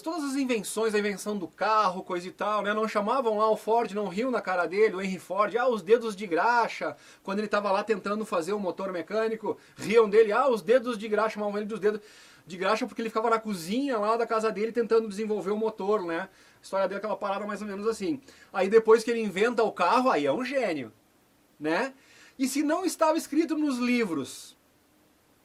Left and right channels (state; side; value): identical; both; correlation 1.00